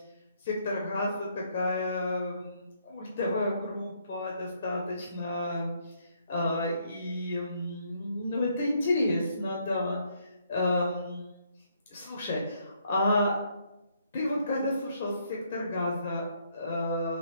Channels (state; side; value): inverted; both; correlation -0.71